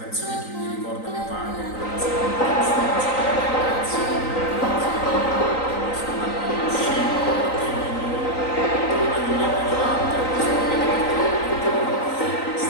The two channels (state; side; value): late; right; 3.9 ms